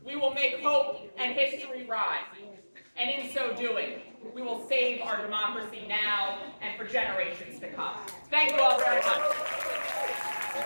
We will make hope and history rise. And in so doing, we will save our democracy now and for generations to come. Thank you all very much.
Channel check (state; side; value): inverted; both; correlation -1.00